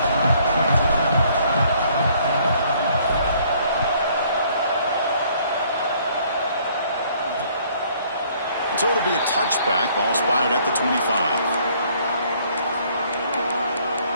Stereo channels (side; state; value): both; inverted; correlation -0.62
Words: So it'll be a touchback. Ball spotted at the 25.